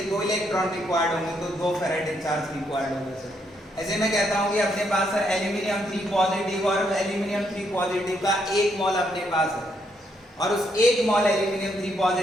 2 इलेक्ट्रॉन रिक्वायर्ड होंगे तो 2 फैराडे चार्ज रिक्वायर्ड होगा सर। ऐसे मैं कहता हूँ कि अपने पास सर एल्यूमिनियम 3 पॉजिटिव और एल्यूमिनियम 3 पॉजिटिव का 1 मोल अपने पास है, और उस 1 मोल एल्यूमिनियम 3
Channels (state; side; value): normal; both; correlation 0.75